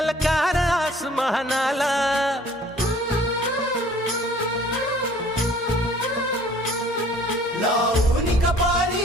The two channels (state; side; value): normal; both; correlation 0.53